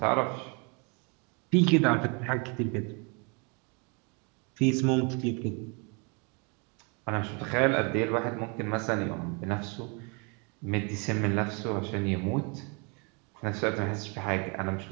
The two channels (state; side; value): quieter; left; 33.1 dB